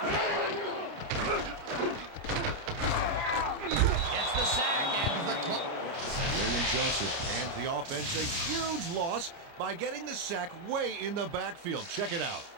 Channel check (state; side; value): late; left; 29 ms